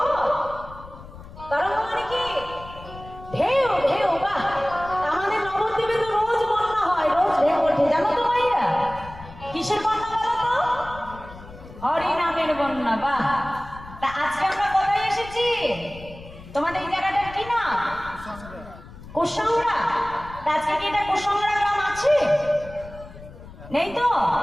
তরঙ্গ মানে কি ঢেউ ঢেউ বাহ আমাদের নবদ্বীপে তো রোজ বন্যা হয় রোজ ঢেউ ওঠে জানো তো ভাইয়া কিসের বন্যা বলো তো হরি নামের বন্যা বাহ তা আজকে আমরা কোথায় এসেছি তোমাদের এই জায়গাটা কি না কুসংড়া আজকে কি এটা কুসংড়া গ্রাম আছে নেই তো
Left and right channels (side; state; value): left; noise; rumble, 17 dB below the sound